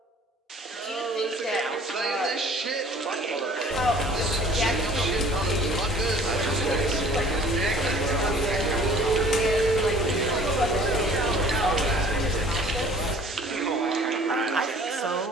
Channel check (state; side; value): normal; both; correlation 0.51